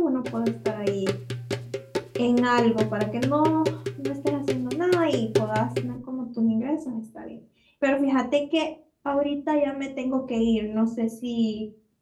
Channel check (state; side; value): identical; both; correlation 1.00